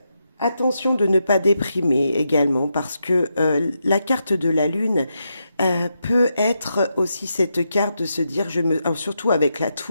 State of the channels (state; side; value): inverted; both; correlation -0.84